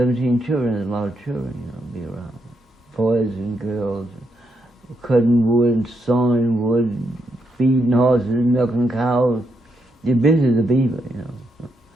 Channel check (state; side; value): normal; both; correlation 0.80